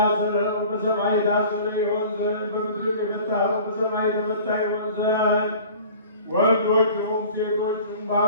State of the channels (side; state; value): both; inverted; correlation -0.44